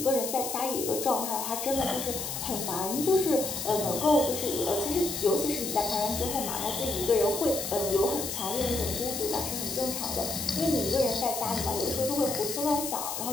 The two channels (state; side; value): noise; left; hiss, 5 dB below the sound